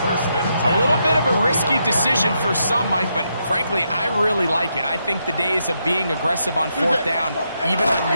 little bit of a risky decision for some, Mike, but frankly, I really like it. I think the days of being aggressive on 4th down, even on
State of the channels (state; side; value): inverted; both; correlation -0.81